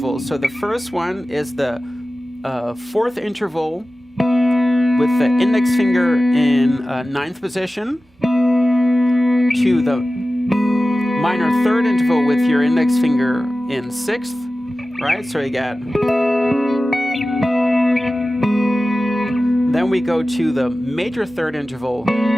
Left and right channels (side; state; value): both; normal; correlation 0.96